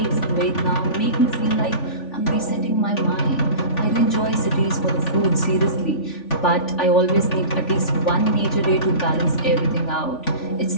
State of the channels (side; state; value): right; late; 3.5 ms